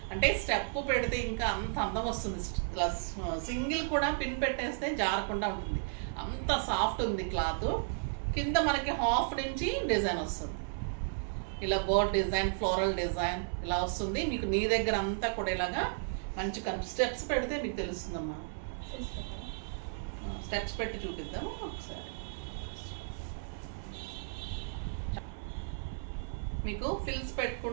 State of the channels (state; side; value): silent; left; 55 dB below the other